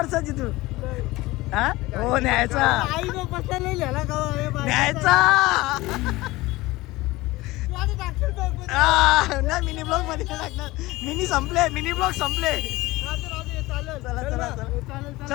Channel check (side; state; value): right; quieter; 19.8 dB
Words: तू? हा हो न्यायचा आईने बसला लिहिला का न्यायचा. नाही मिनी ब्लॉग मध्ये टाकणार. मिनी ब्लॉग संपले. चला चला चला